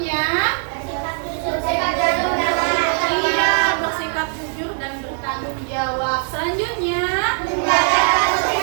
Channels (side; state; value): left; silent; 58 dB below the other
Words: bersikap jujur dan bertanggung jawab. Selanjutnya,